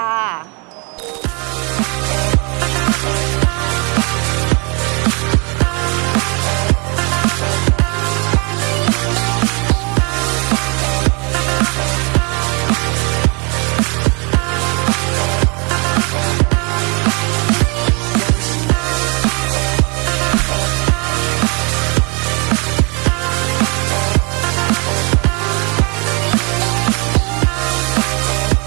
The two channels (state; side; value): quieter; left; 32.5 dB